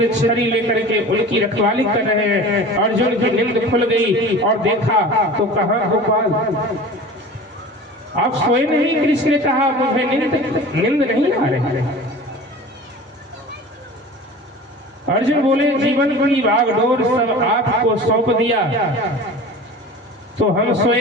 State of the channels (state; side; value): normal; both; correlation 0.38